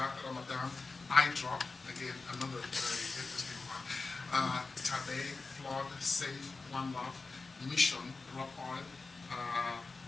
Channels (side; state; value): right; quieter; 3.9 dB